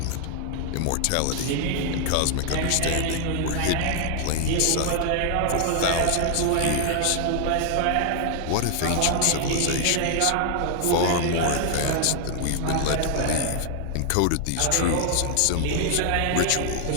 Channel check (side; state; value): both; different; correlation 0.00